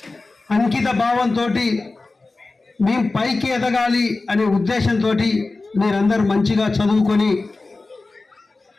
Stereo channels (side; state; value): right; quieter; 3.5 dB